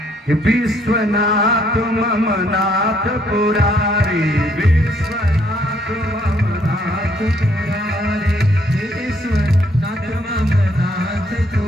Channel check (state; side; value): normal; both; correlation 0.68